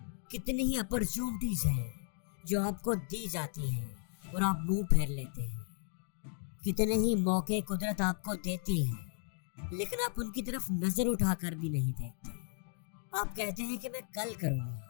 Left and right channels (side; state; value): right; silent; 54 dB below the other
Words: کتنی ہی اپرچونٹیز ہیں جو آپ کو دی جاتی ہیں اور آپ منہ پھیر لیتے ہیں، کتنے ہی موقع قدرت آپ کو دیتی ہے لیکن آپ ان کی طرف نظر اٹھا کر بھی نہیں دیکھتے۔ آپ کہتے ہیں کہ میں کل کروں